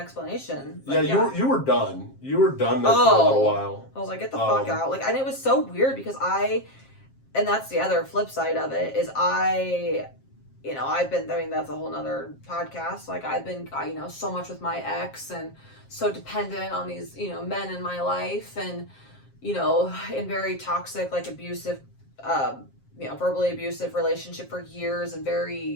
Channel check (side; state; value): right; late; 7.5 ms